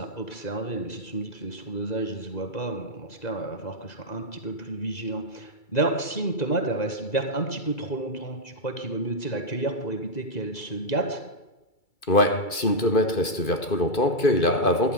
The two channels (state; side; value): late; right; 2.3 ms